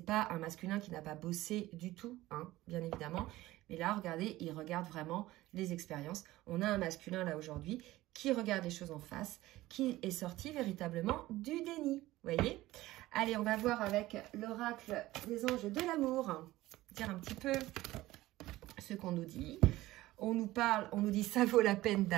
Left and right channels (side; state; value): left; quieter; 17.1 dB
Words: pas un masculin qui n'a pas bossé du tout, hein, bien évidemment. Mais là, regardez, il regarde vraiment les expériences. On a un masculin là aujourd'hui qui regarde les choses en face, qui est sorti véritablement du déni. Vous voyez? Allez, on va voir avec l'oracle des anges de l'amour, dire un petit peu ce qu'on nous dit. On nous dit ça vaut la peine